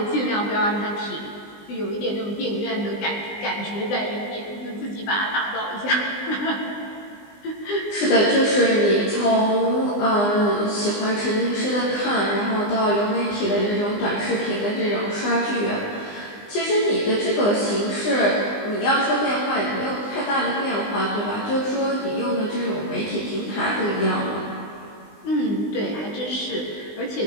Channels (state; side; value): late; right; 20 ms